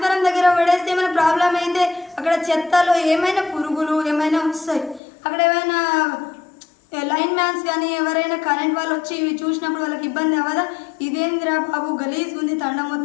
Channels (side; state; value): right; drops out; at 5.0 s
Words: దగ్గర పడేస్తే ఏమైనా ప్రాబ్లం అయితే అక్కడ చెత్తలో ఏమైనా పురుగులు ఏమైనా వస్తాయి. అక్కడ ఏమైనా లైన్ మ్యాన్స్ కానీ ఎవరైనా కరెంట్ వాళ్ళు వచ్చి ఇవి చూసినప్పుడు వాళ్ళకి ఇబ్బంది అవ్వదా? ఇదేంద్రా బాబు గలీజ్ ఉంది తండ